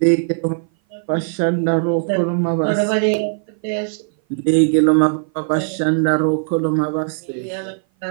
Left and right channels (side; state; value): left; silent; 58 dB below the other